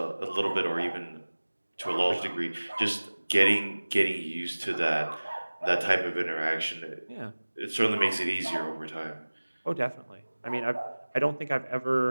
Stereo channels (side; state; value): both; inverted; correlation -1.00